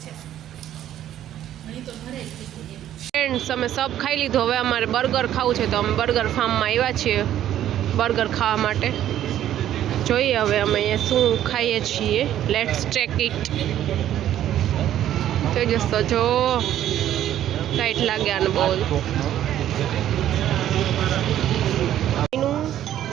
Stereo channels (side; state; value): left; quieter; 11.7 dB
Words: ફ્રેન્ડ્સ અમે સબ ખાઈ લીધું. હવે અમારે બર્ગર ખાવું છે તો અમે બર્ગર ફાર્મમાં આવ્યા છીએ બર્ગર ખાવા માટે. જોઈએ હવે અમે અહીંયા શું ખાઈએ છીએ. Let's check it. તેજસ તો જો ટાઈટ લાગ્યા ને બહુ.